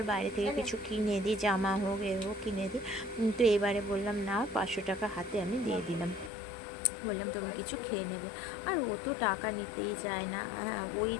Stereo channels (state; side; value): drops out; right; at 6.3 s